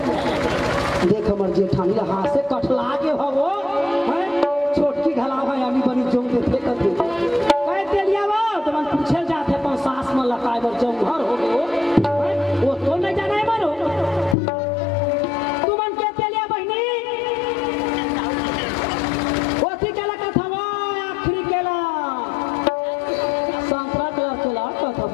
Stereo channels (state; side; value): drops out; right; at 14.4 s